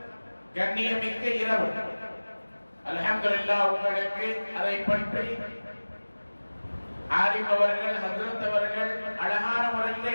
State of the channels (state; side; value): inverted; both; correlation -1.00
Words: கண்ணியமிக்க இரவு. அல்ஹம்துலில்லாஹ் உங்களுக்கு அதை பற்றி ஆலிம் அவர்கள், ஹஜ்ரத் அவர்கள் அழகான